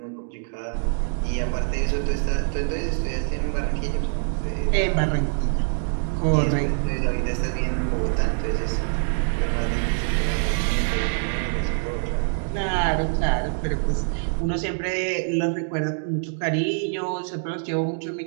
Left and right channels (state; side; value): silent; left; digital silence